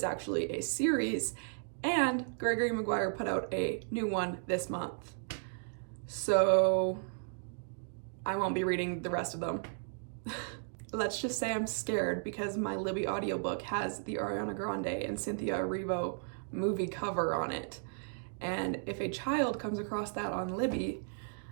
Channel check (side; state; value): left; silent; digital silence